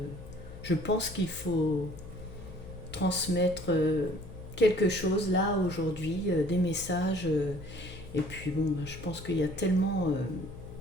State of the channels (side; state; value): left; noise; hum, 15 dB below the sound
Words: je pense qu'il faut transmettre quelque chose là, aujourd'hui, des messages. Et puis, bon, je pense qu'il y a tellement.